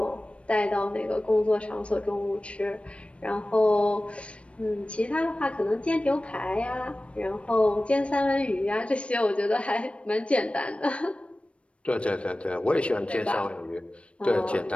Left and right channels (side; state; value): right; late; 0.061 ms